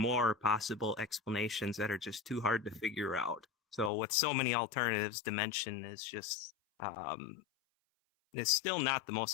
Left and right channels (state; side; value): drops out; right; at 3.9 s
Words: possible explanations that are just too hard to figure out. So with so many alternatives, dimension is just it's still not the